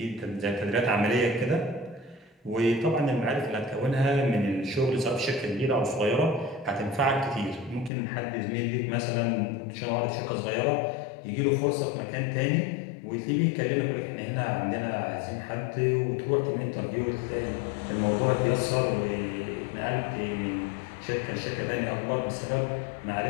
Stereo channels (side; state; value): right; drops out; at 7.9 s